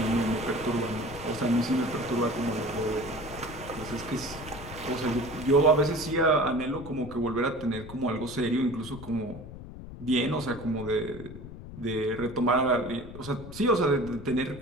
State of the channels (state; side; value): noise; left; rumble, 13 dB below the sound